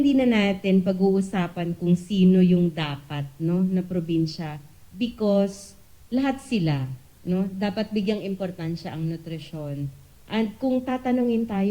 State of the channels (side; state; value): both; identical; correlation 1.00